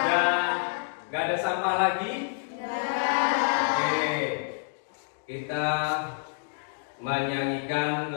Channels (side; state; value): right; silent; digital silence